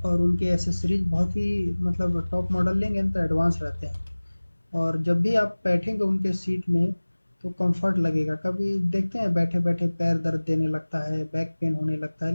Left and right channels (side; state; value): both; inverted; correlation -1.00